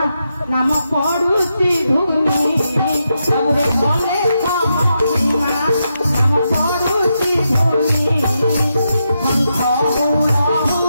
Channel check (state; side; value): inverted; both; correlation -0.84